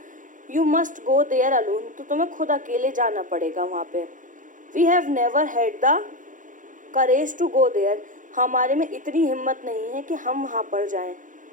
you must go there alone, तो तुम्हें खुद अकेले जाना पड़ेगा वहाँ पे। We have never had the courage to go there, हमारे में इतनी हिम्मत नहीं है कि हम वहाँ पर जाएं।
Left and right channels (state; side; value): late; left; 0.38 ms